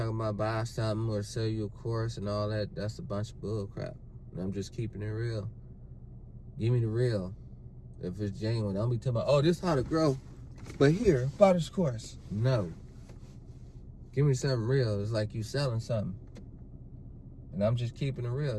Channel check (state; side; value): identical; both; correlation 1.00